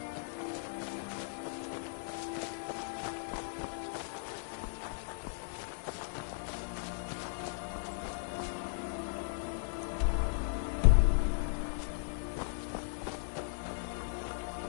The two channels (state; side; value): silent; right; digital silence